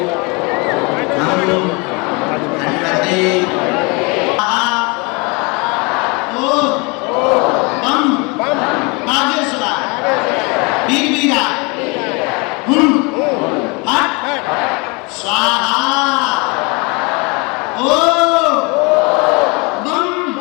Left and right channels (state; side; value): quieter; right; 28.5 dB